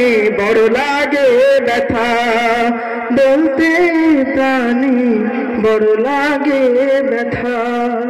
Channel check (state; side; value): identical; both; correlation 1.00